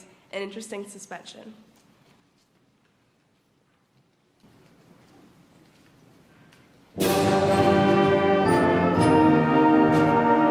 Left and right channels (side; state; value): both; identical; correlation 1.00